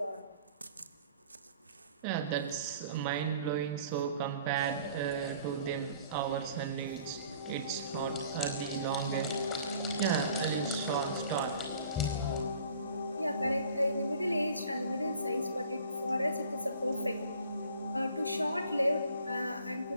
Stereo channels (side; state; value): both; inverted; correlation -0.52